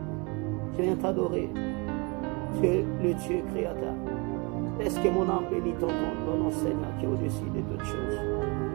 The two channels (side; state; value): left; quieter; 29.3 dB